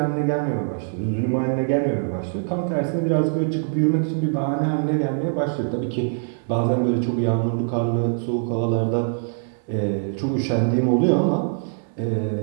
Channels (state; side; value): silent; left; 58 dB below the other